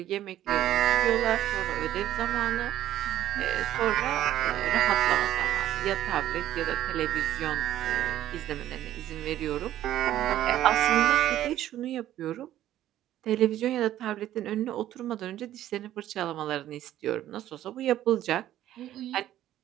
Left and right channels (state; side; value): quieter; left; 12.7 dB